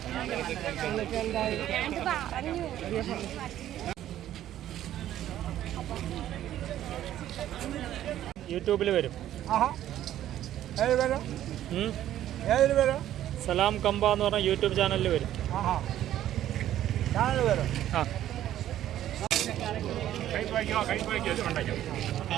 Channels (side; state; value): left; quieter; 12.3 dB